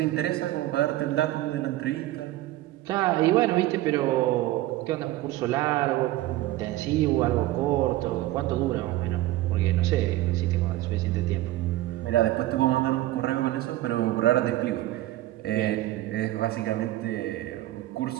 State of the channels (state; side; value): quieter; left; 15.9 dB